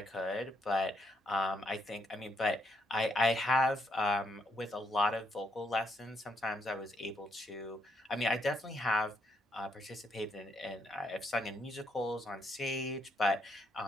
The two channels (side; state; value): both; normal; correlation 0.75